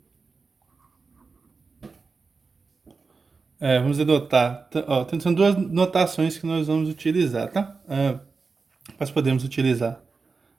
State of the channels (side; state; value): left; quieter; 4.5 dB